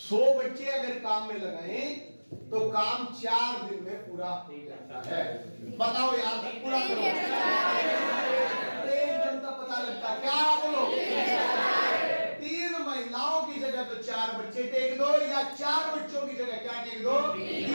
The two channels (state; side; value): inverted; both; correlation -1.00